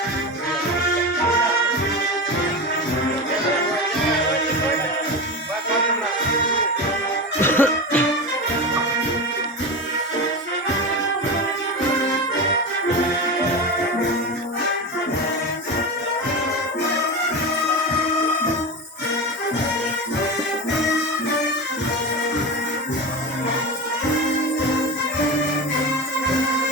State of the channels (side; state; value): both; normal; correlation 0.22